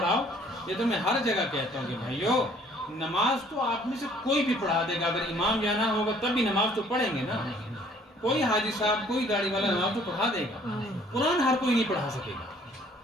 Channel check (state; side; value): normal; both; correlation 0.58